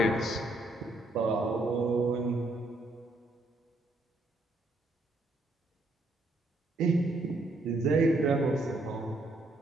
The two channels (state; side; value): normal; both; correlation 0.72